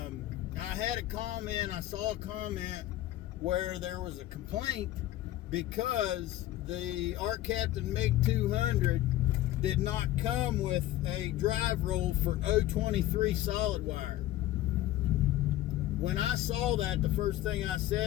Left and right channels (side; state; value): right; quieter; 14.6 dB